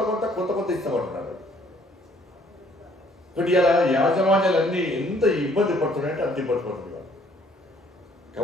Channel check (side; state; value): both; normal; correlation 0.61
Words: కొంత కొంత కొంత ఇస్తామంటున్నారు. ఇప్పుడు ఇలా యాజమాన్యాలన్నీ ఎంత ఇబ్బంది పడుతున్నాయంటే అంత ఇబ్బంది పడుతుంది.